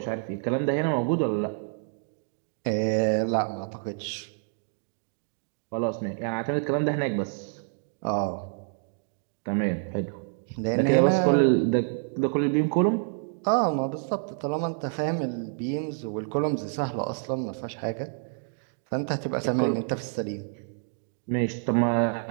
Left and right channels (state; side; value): silent; left; digital silence